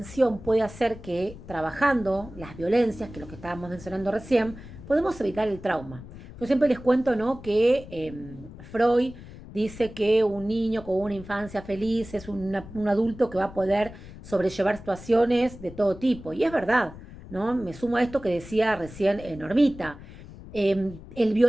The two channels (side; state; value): left; noise; rumble, 16 dB below the sound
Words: puede hacer que trabajando las violencias, que es lo que estábamos mencionando recién, podemos evitar el trauma. Yo siempre les cuento, ¿no? Que Freud dice que un niño con una infancia feliz es un adulto que va a poder sobrellevar situaciones de todo tipo. Y es verdad, ¿no? Me sumo a esto que decía recién Normita. El